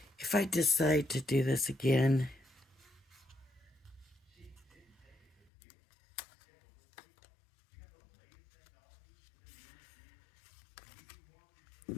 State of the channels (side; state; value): right; drops out; at 5.5 s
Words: If I decide to do this again, I